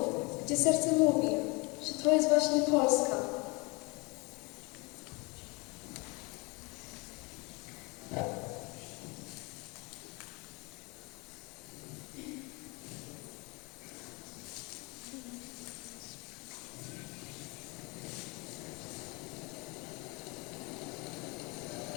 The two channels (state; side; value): quieter; right; 27.7 dB